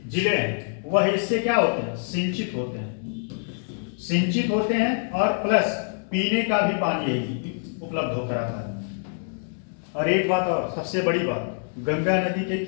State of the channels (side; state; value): right; silent; digital silence